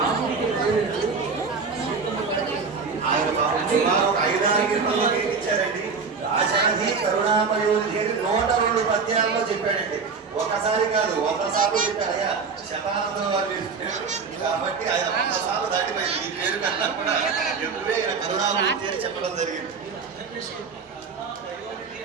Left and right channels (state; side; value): quieter; left; 5.1 dB